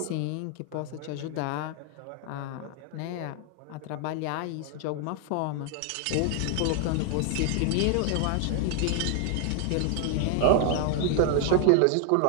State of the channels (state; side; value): different; both; correlation 0.00